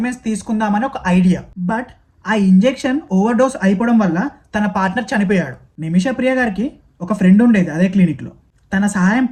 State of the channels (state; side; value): identical; both; correlation 1.00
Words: తీసుకుందామని ఒక ఐడియా. బట్ ఆ ఇంజెక్షన్ ఓవర్ డోస్ అయిపోవడం వల్ల తన పార్ట్నర్ చనిపోయాడు. నిమిషా ప్రియ గారికి ఒక ఫ్రెండ్ ఉండేది అదే క్లినిక్లో. తన